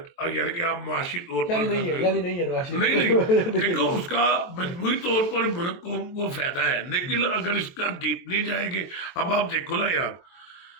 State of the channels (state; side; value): late; right; 23 ms